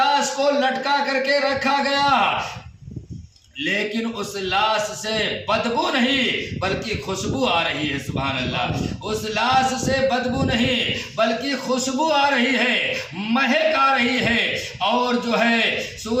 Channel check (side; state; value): both; identical; correlation 1.00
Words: کو لٹکا کر کے رکھا گیا، لیکن اس لاش سے بدبو نہیں بلکہ خوشبو آ رہی ہے۔ سبحان اللہ، اس لاش سے بدبو نہیں بلکہ خوشبو آ رہی ہے، مہک آ رہی ہے، اور جو ہے